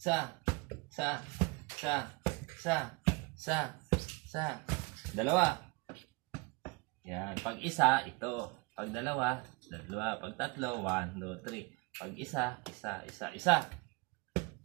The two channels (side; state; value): left; quieter; 27.8 dB